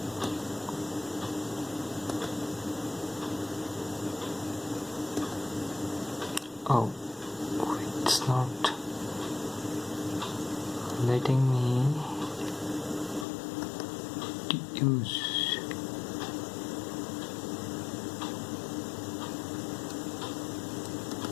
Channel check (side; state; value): right; drops out; at 13.2 s